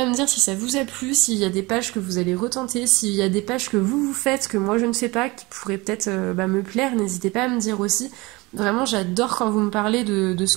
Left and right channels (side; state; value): left; quieter; 23.4 dB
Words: me dire si ça vous a plu, s'il y a des pages que vous allez retenter, s'il y a des pages que vous faites, que moi je ne sais pas, qui pourraient peut-être bah, me plaire, n'hésitez pas à me dire aussi. Vraiment, j'adore quand vous me parlez de